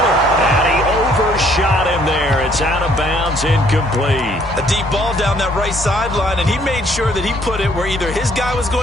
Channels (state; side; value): normal; both; correlation 0.63